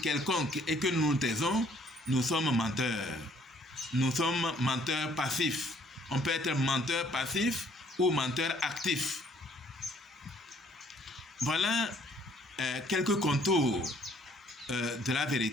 quelconque et que nous nous taisons, nous sommes menteurs. Nous sommes menteurs passifs. On peut être menteur passif ou menteur actif. Voilà quelques contours de la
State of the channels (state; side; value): normal; both; correlation 0.62